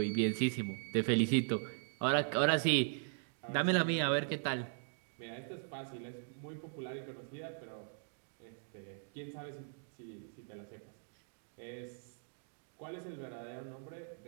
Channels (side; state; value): left; silent; digital silence